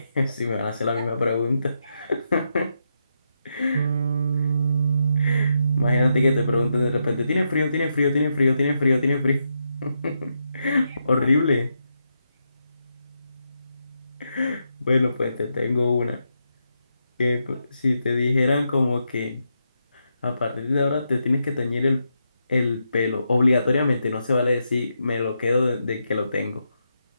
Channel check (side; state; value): both; inverted; correlation -0.83